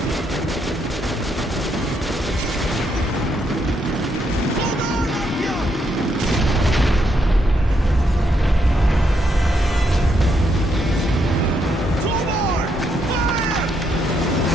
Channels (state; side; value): normal; both; correlation 0.77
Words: Hold on, Artyom! Two more! Fire!